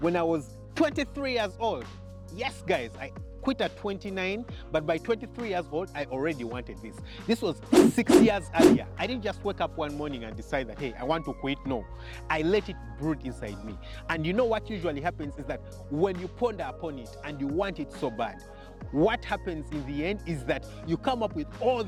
I was 23 years old. Yes, guys, I quit at 29, but by 23 years old, I already wanted this. This was 6 years earlier. I didn't just wake up one morning and decide that, hey, I want to quit. No, I let it brood inside me. And you know what usually happens is that when you ponder upon it and you want it so bad, what happens in the end is that you come up with all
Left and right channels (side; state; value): both; identical; correlation 1.00